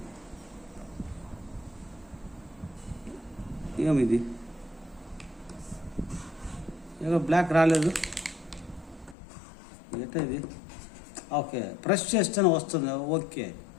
ఏమిది, ఏదో బ్లాక్ రాలేదు. ఎట్లా ఇది? ఓకే, ప్రెస్ చేస్తేనే వస్తుంది. ఓకే,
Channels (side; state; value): right; drops out; at 9.2 s